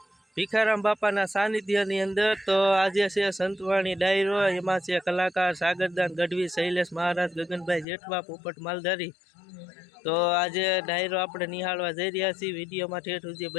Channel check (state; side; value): drops out; right; at 7.9 s